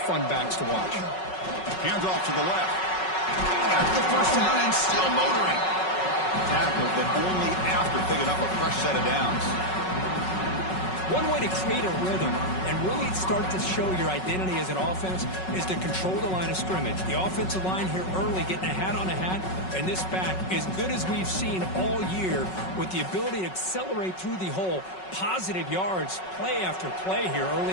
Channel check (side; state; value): right; late; 5.4 ms